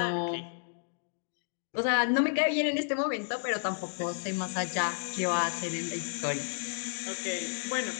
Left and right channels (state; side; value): silent; right; digital silence